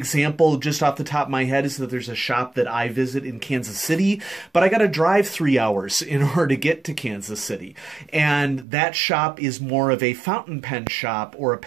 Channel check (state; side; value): drops out; left; at 8.7 s